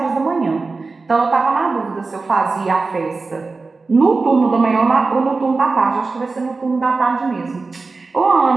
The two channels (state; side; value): quieter; left; 4.0 dB